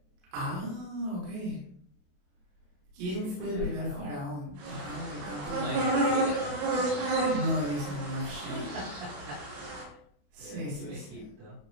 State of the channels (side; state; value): left; late; 28 ms